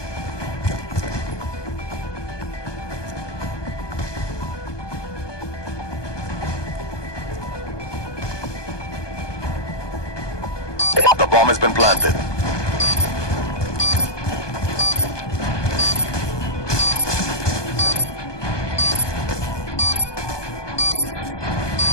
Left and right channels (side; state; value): right; late; 1.2 ms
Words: Bomb has been planted.